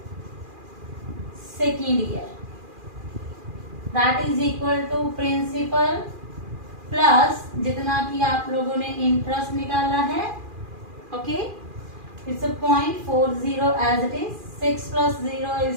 second year, that is equal to principal plus जितना कि आप लोगों ने इंटरेस्ट निकाला है। Okay, it's 0.40 as it is. 6 plus 0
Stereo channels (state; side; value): late; left; 2.4 ms